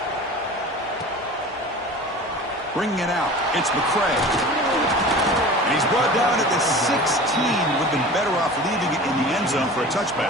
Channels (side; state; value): both; normal; correlation 0.37